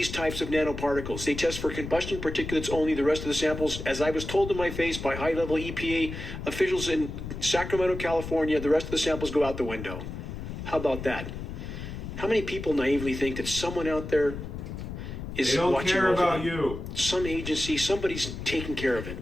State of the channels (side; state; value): left; noise; rumble, 8 dB below the sound